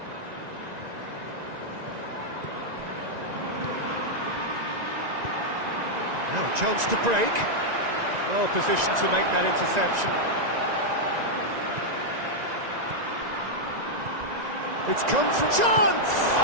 Now a chance to break. Well positioned to make that interception. It's come from chance!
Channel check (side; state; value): left; late; 1.9 ms